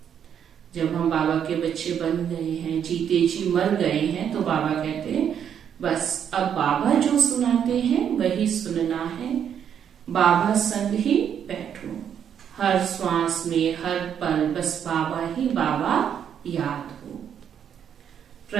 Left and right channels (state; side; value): quieter; left; 8.6 dB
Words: जब हम बाबा के बच्चे बन गए हैं, जीते जी मर गए हैं, तो बाबा कहते हैं बस अब बाबा जो सुनाते हैं वही सुनना है। बाबा संग ही बैठो। हर श्वास में, हर पल बस बाबा ही बाबा याद हो।